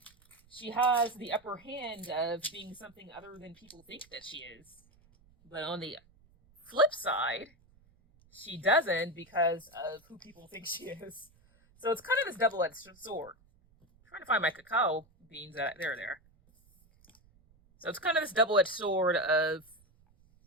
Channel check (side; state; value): right; noise; rumble, 30 dB below the sound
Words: she has the upper hand of being something other than people think that she is. But on the flip side, she doesn't because of who people think she is. So it's kind of this double-edged sword. I'm trying to find my cacao beans. There. So it's kind of this double-edged sword of